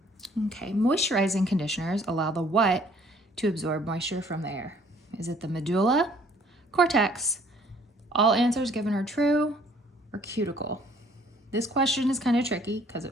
Okay, moisturizing conditioners allow the what to absorb moisture from the air? Is it the medulla, cortex, all answers given are true, or cuticle? This question is kind of tricky because at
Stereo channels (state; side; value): normal; both; correlation 0.59